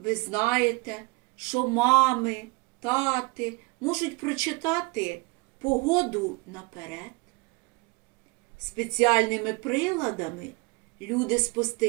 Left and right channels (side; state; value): left; quieter; 26.8 dB